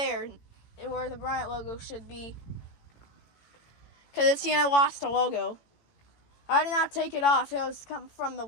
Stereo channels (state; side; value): late; right; 18 ms